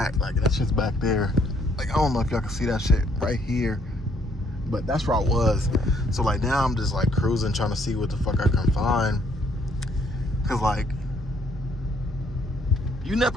Like, that shit's back there. Like, I don't know if y'all can see that shit right here, but that's where I was. So like now I'm just like cruising, trying to see what the fuck I can find. Cause like, you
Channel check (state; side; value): normal; both; correlation 0.67